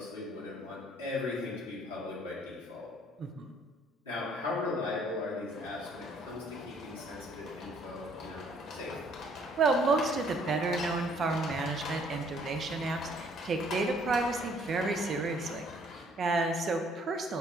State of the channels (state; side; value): normal; both; correlation 0.62